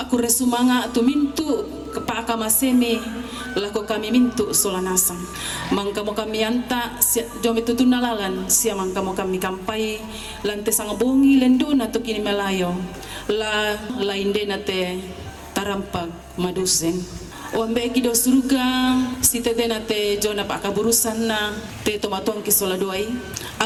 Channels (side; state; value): both; identical; correlation 1.00